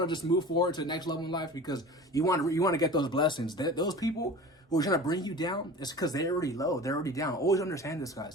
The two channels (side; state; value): both; normal; correlation 0.37